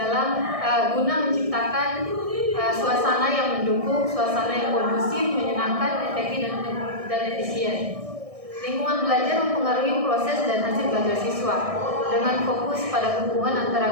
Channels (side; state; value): left; late; 1.6 ms